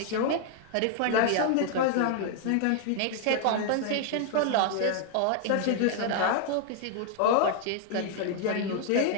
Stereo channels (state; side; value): different; both; correlation 0.00